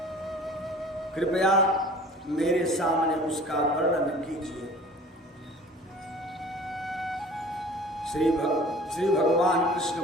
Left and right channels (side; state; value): both; normal; correlation 0.45